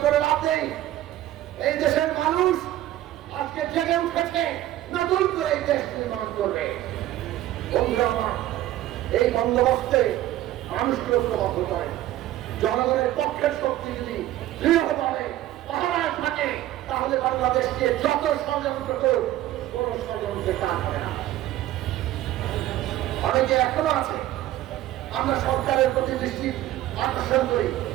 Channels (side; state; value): left; quieter; 14.2 dB